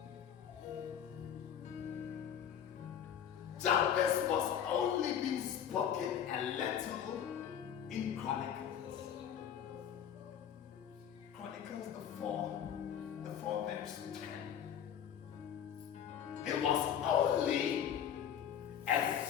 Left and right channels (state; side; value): quieter; right; 9.1 dB